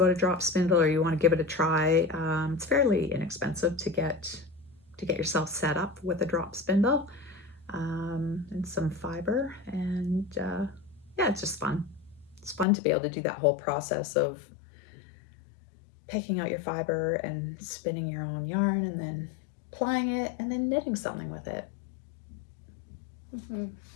a drop spindle or you want to give it a try, it's fairly inexpensive to get yourself set up with a drop spindle and some fiber, and it's just fun. It's fun to be able to do that whole process of picking out your fiber and spinning your own yarn and then plying it and then knitting something with it. Oh,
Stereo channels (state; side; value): drops out; right; at 12.7 s